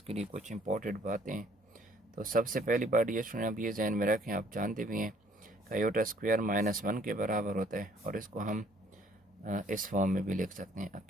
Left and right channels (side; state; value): both; normal; correlation 0.61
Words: लिए कुछ इंपॉर्टेंट बातें हैं। तो सबसे पहली बात डियर स्टूडेंट, आप ये जहन में रखें, आप जानते भी हैं कि आयोटा स्क्वायर -1 के बराबर होता है और इसको हम इस फॉर्म में भी लिख सकते हैं